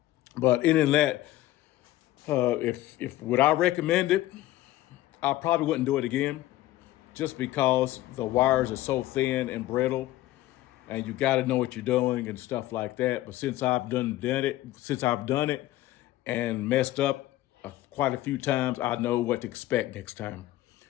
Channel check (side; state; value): right; quieter; 15.7 dB